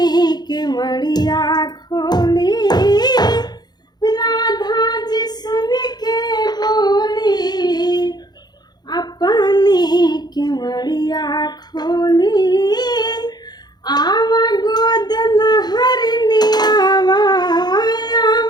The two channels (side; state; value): right; late; 0.20 ms